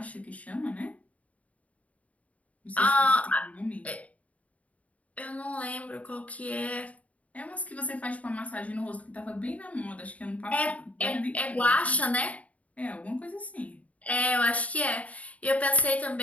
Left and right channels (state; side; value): late; right; 0.068 ms